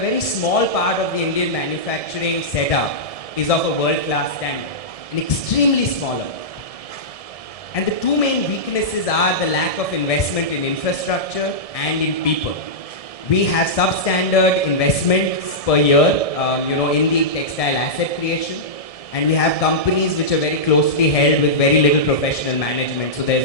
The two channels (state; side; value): late; right; 1.7 ms